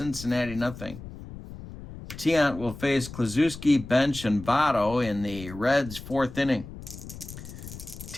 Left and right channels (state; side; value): noise; left; rumble, 13 dB below the sound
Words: 0. Tiant will face Klazuski, Bench, and Votto in the Reds' 4th inning.